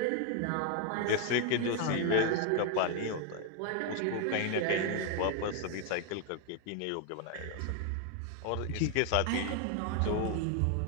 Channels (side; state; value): both; different; correlation 0.00